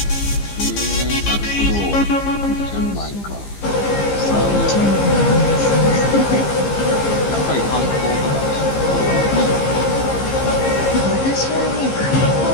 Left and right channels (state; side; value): late; right; 15 ms